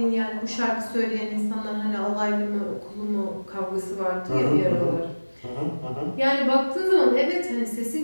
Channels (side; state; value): both; inverted; correlation -1.00